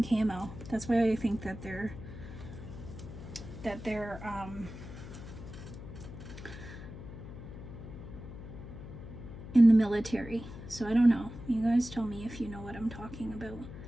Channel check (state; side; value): noise; left; hum, 12 dB below the sound